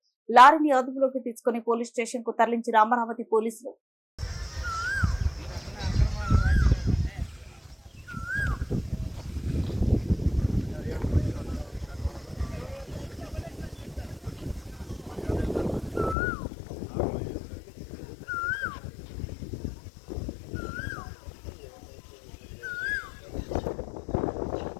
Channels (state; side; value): drops out; right; at 16.2 s